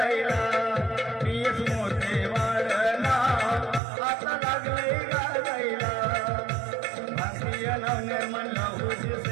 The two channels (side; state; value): left; drops out; at 3.8 s